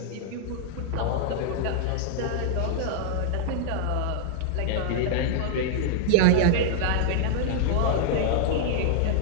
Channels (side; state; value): both; different; correlation -0.01